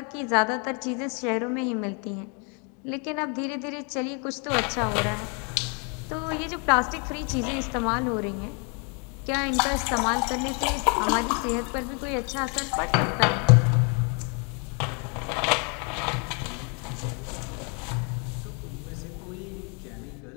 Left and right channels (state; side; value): quieter; right; 35.9 dB